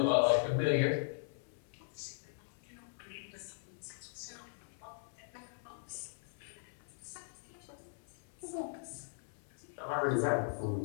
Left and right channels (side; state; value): right; silent; 52 dB below the other